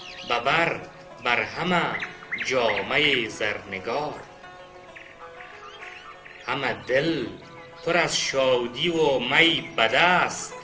بر همه جامه زرنگار. همه دل پر از شادی و می به دست،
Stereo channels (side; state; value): both; identical; correlation 1.00